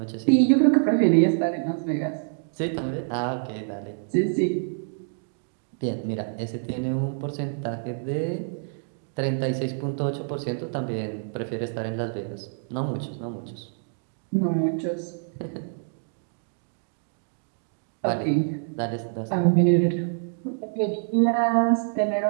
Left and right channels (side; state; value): left; silent; digital silence